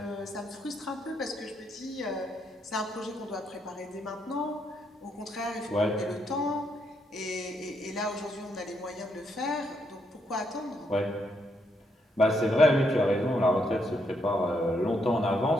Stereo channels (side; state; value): both; normal; correlation 0.76